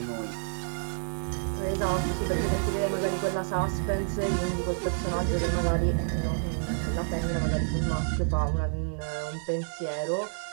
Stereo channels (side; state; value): left; silent; 59 dB below the other